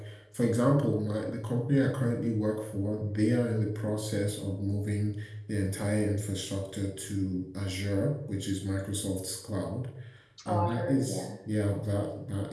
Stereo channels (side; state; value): both; identical; correlation 1.00